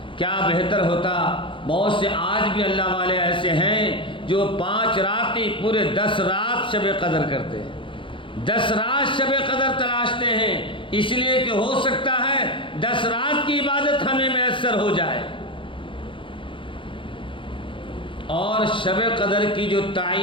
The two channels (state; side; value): late; right; 0.25 ms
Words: کیا بہتر ہوتا، بہت سے آج بھی اللہ والے ایسے ہیں جو 5 راتیں پورے 10 رات شب قدر کرتے ہیں، 10 رات شب قدر تلاشتے ہیں، اس لیے کہ ہو سکتا ہے 10 رات کی عبادت ہمیں میسر ہو جائے۔ اور شب قدر کی جو